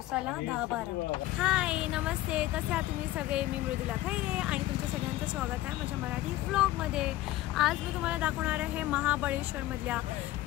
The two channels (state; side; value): quieter; right; 15.8 dB